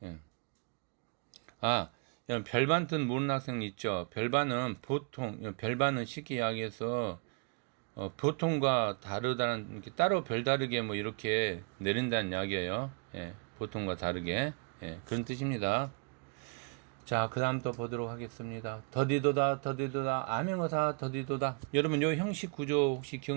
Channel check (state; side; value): quieter; left; 36.8 dB